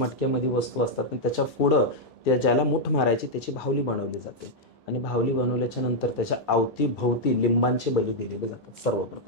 वस्तू असतात, आणि त्याच्या पुढं त्या ज्याला मूठ मारायची त्याची बाहुली बनवली जाते, आणि बाहुली बनवल्याच्या नंतर त्याच्या अवतीभोवती लिंबांचे बली दिलेले जातात.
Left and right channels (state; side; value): normal; both; correlation -0.03